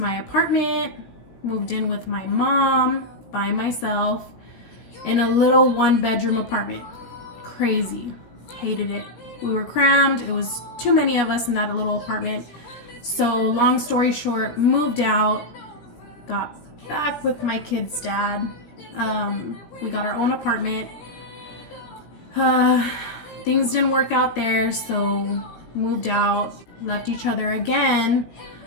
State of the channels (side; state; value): right; late; 17 ms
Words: apartment, moved in with my mom by myself in a little 1-bedroom apartment. Crazy, hated it. We were crammed, it was too many of us in that little apartment. So long story short, moved out, got back with my kid's dad. We got our own apartment. Things didn't work out there, so moved out, left each other again.